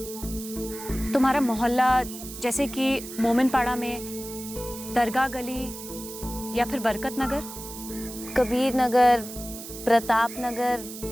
तुम्हारा मोहल्ला जैसे कि मोमिनपाड़ा में, दरगाह गली या फिर बरकत नगर, कबीर नगर, प्रताप नगर?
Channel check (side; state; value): right; noise; hiss, 12 dB below the sound